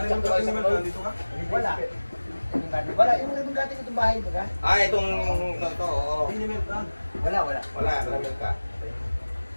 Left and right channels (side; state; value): both; inverted; correlation -1.00